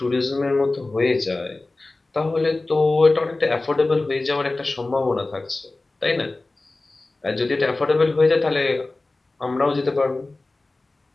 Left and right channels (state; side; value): quieter; right; 3.1 dB